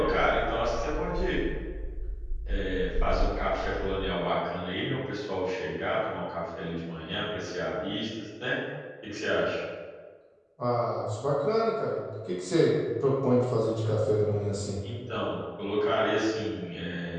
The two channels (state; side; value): identical; both; correlation 1.00